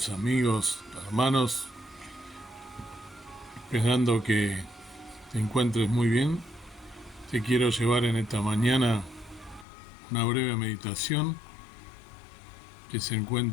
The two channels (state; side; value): drops out; right; at 9.7 s